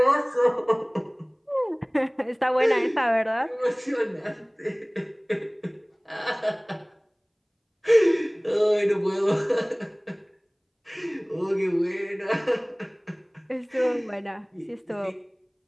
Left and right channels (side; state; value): both; identical; correlation 1.00